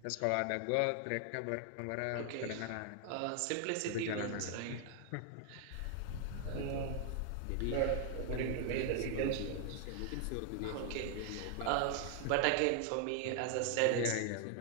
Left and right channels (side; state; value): both; different; correlation 0.00